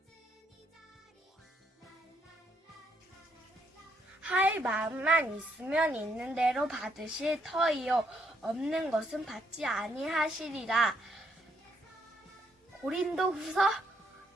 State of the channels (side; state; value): both; normal; correlation 0.73